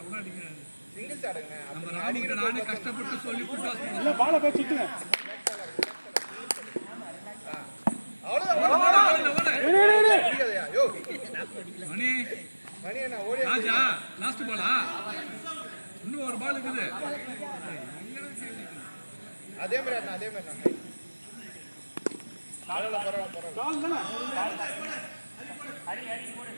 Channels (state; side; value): inverted; both; correlation -1.00